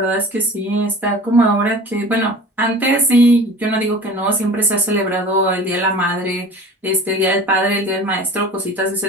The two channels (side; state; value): both; normal; correlation 0.40